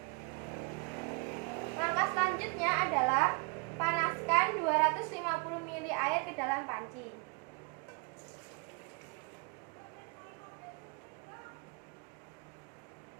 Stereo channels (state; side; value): quieter; left; 33.1 dB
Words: Langkah selanjutnya adalah panaskan 250 ml air ke dalam panci.